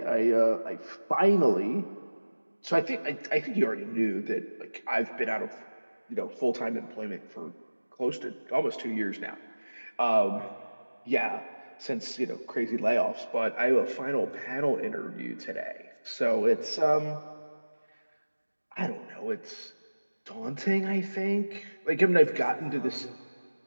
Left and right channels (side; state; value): both; inverted; correlation -1.00